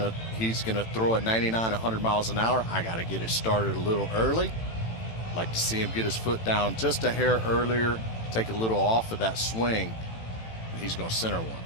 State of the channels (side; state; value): right; late; 18 ms